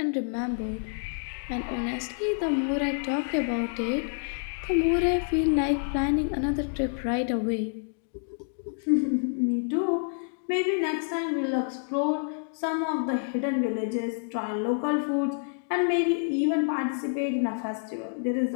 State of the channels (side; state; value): right; silent; digital silence